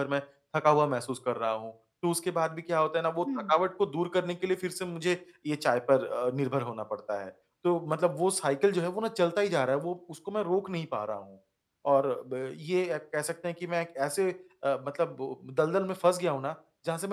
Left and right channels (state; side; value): identical; both; correlation 1.00